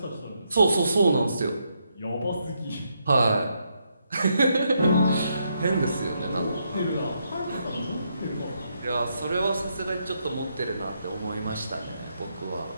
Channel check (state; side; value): inverted; both; correlation -0.79